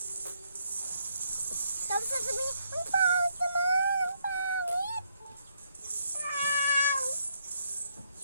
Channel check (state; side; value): inverted; both; correlation -0.74